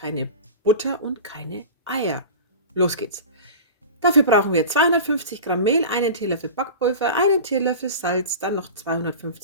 Butter und keine Eier. Los geht's. Dafür brauchen wir 250 Gramm Mehl, einen Teelöffel Backpulver, einen Teelöffel Salz, dann noch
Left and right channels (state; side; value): inverted; both; correlation -0.33